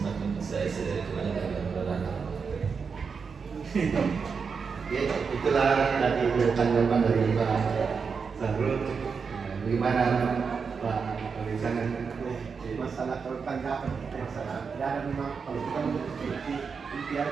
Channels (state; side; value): quieter; left; 5.6 dB